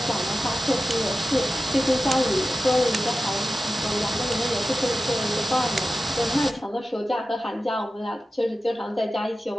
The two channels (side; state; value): both; normal; correlation 0.94